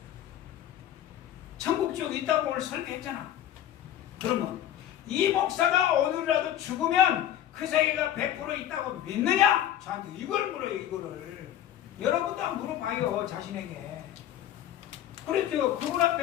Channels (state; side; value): quieter; right; 11.4 dB